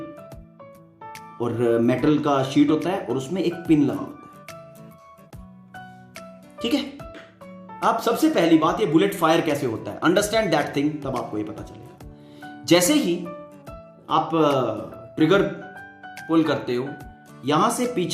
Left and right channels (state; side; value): identical; both; correlation 1.00